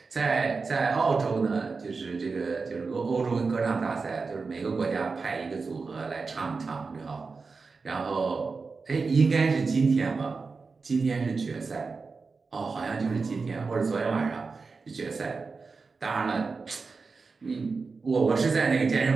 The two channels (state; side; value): quieter; left; 4.5 dB